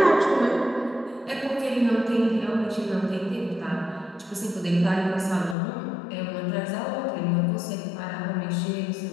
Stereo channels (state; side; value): drops out; right; at 5.6 s